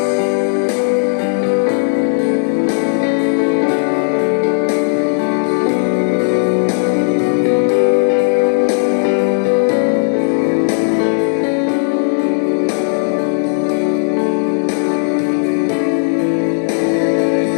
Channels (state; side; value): silent; right; digital silence